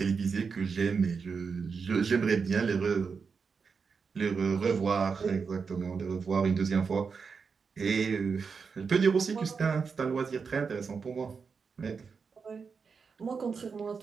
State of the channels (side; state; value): left; quieter; 5.5 dB